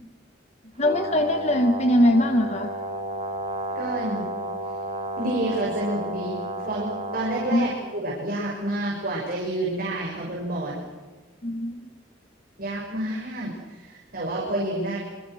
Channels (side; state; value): both; normal; correlation 0.45